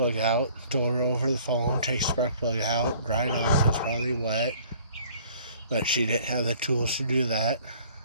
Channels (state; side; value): inverted; both; correlation -0.54